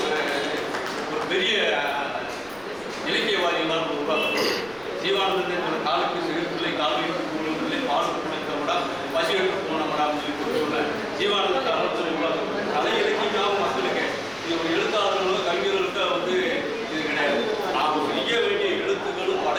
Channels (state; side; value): noise; left; rumble, 25 dB below the sound